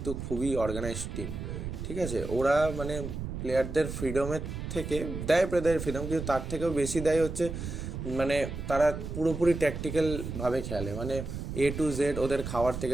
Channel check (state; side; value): noise; right; rumble, 6 dB below the sound